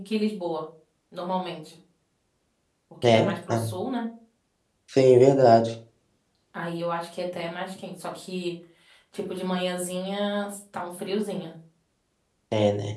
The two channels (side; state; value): both; identical; correlation 1.00